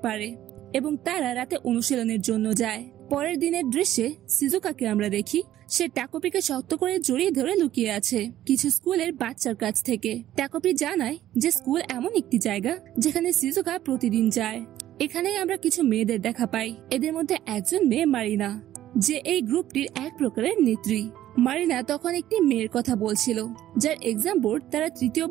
পারে, এবং তারা রাতে অনুশীলনের জন্য যায়। পরের দিনের দৃশ্যে সিজুকাকে আমরা দেখি সে টাকোপিকে শক্ত করে জড়িয়ে ধরে লুকিয়ে আছে কিছু স্কুলের বাচ্চার কাছ থেকে। টাকোপি জানায় যে স্কুল এমন একটি জায়গা যেখানে সিজুকা প্রতিদিন যায়। এখানেই আমরা কিছু মেয়েদের দেখা পাই। এদের মধ্যে একজন মেয়ে মারিনা, যে এই গ্রুপটির এক প্রকারের নেত্রী। মারিনা তখন একটি মেয়ের কথা বলছিল যার এক্সাম বোর্ড তারা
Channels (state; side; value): quieter; left; 12.9 dB